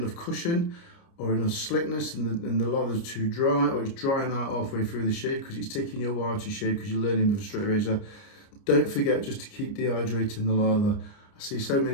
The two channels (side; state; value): right; late; 29 ms